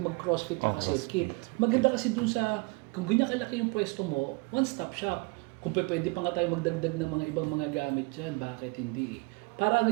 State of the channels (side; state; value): left; quieter; 28.7 dB